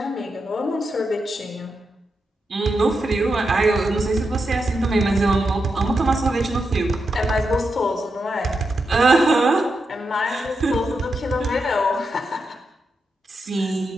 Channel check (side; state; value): both; normal; correlation 0.86